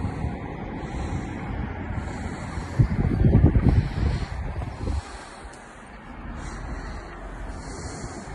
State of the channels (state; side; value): identical; both; correlation 1.00